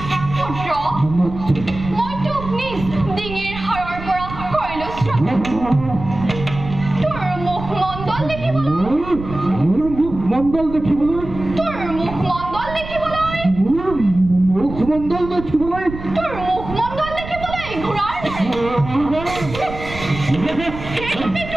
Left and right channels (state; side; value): noise; right; rumble, 11 dB below the sound